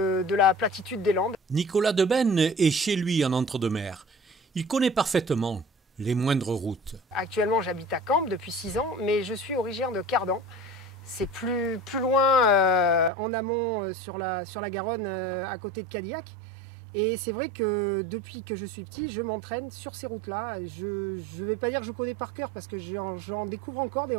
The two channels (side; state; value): left; drops out; at 13.1 s